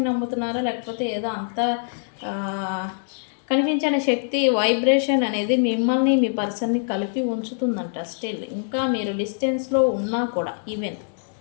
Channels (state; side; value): silent; right; digital silence